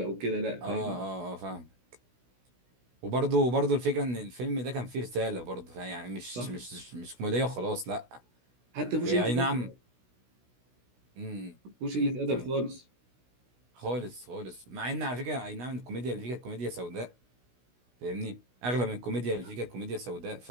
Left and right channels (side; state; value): left; late; 16 ms